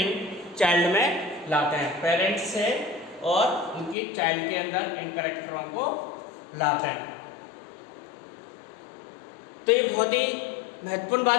चाइल्ड में लाते हैं। पेरेंट्स से और उनकी चाइल्ड के अंदर इन कैरेक्टरों को लाते हैं। तो ये बहुत ही महत्वपूर्ण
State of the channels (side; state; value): right; drops out; at 4.0 s